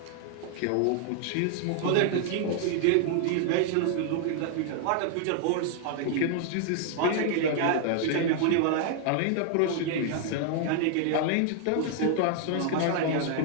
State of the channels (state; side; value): different; both; correlation 0.00